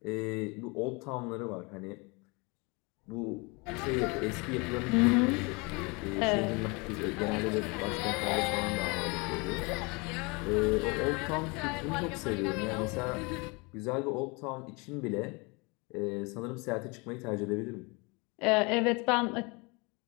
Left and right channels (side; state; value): right; quieter; 28.3 dB